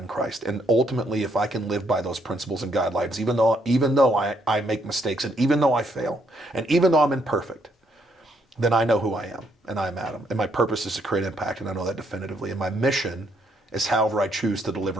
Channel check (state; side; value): normal; both; correlation 0.72